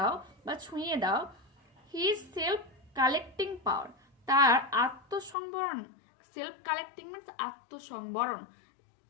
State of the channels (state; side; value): drops out; right; at 5.4 s